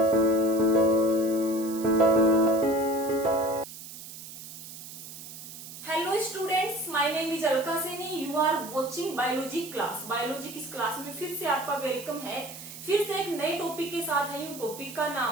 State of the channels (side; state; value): right; noise; hiss, 13 dB below the sound